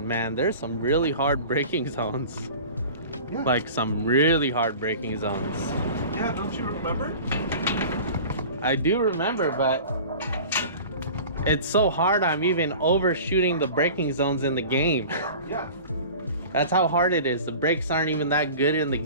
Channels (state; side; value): inverted; both; correlation -0.39